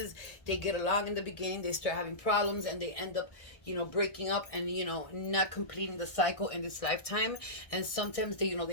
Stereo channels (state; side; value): late; right; 1.6 ms